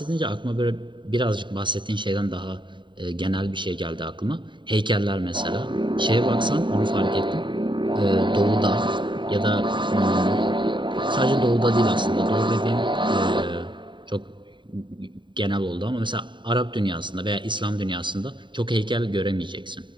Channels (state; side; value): late; left; 0.23 ms